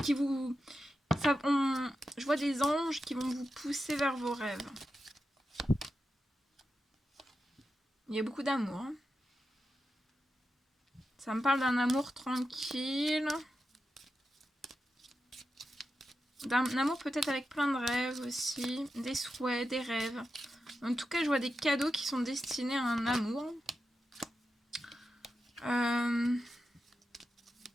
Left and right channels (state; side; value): normal; both; correlation 0.90